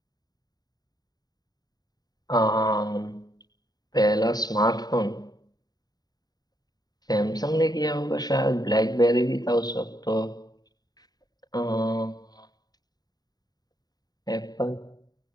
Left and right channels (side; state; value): right; late; 0.19 ms